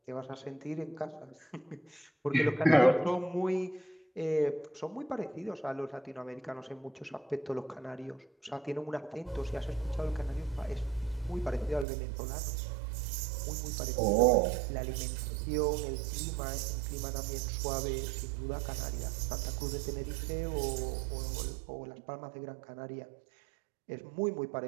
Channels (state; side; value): drops out; left; at 11.9 s